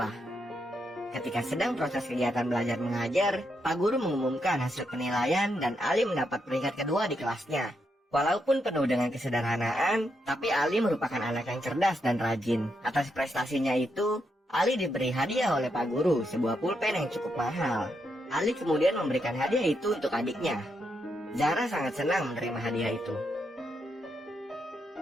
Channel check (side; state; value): both; normal; correlation 0.81